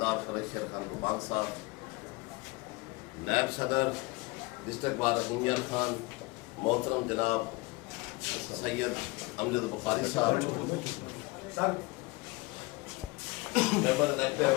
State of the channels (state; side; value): quieter; right; 24.3 dB